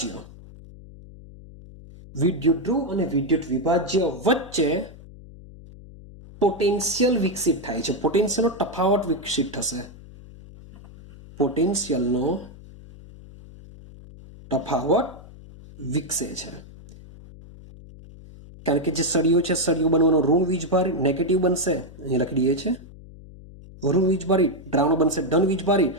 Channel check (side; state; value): left; noise; hum, 19 dB below the sound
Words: વિદ્યુત ધ્રુવ અને વિદ્યુત વિભાજ્ય વચ્ચે પોટેન્શિયલ વિકસિત થાય છે. પોટેન્શિયલનો તફાવત વિકસિત થશે. પોટેન્શિયલનો તફાવત વિકસે છે, કારણ કે જે સળિયો છે, સળિયો બનવાનો ઋણ વીજભારિત, નેગેટિવ બનશે, અહીં લખી દઈએ છે ઋણ વીજભારિત, દ્રાવણ બનશે ધન વીજભારિત.